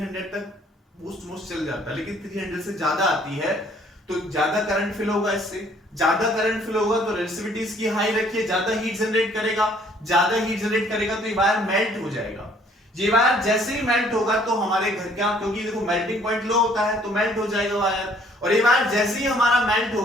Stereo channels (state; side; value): normal; both; correlation 0.61